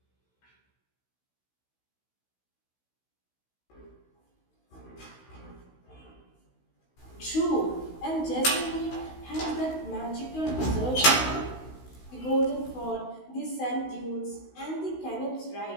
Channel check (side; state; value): right; late; 16 ms